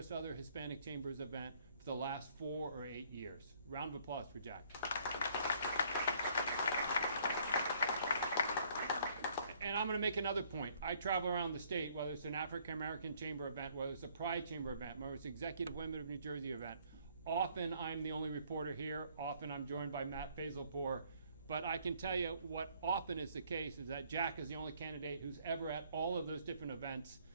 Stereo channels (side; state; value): both; inverted; correlation -0.63